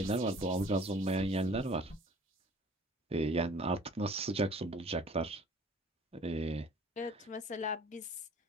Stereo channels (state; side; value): normal; both; correlation 0.51